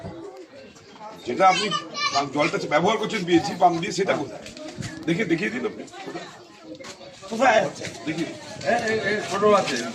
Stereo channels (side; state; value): both; identical; correlation 1.00